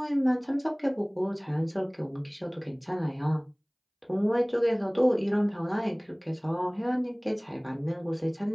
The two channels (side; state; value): both; identical; correlation 1.00